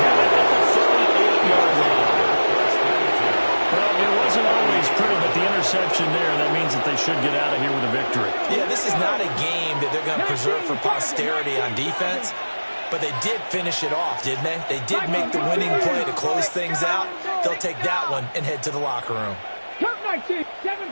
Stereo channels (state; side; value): inverted; both; correlation -1.00